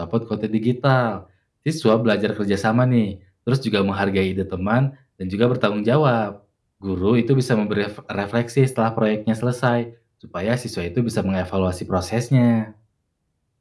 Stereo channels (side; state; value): both; identical; correlation 1.00